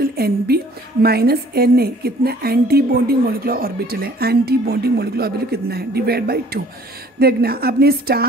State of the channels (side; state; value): both; normal; correlation 0.54